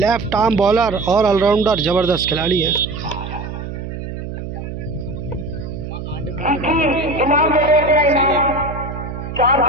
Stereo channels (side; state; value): right; noise; hum, 8 dB below the sound